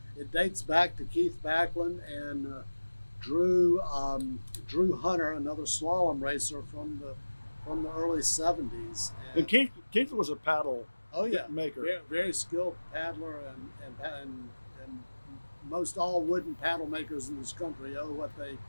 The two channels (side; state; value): both; inverted; correlation -1.00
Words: it dates back to Keith Backlund and Drew Hunter, another slalom racer from the early 70s. And Keith was a paddle maker. Very, very skilled paddler, and most all wooden paddle makers in this country owe what they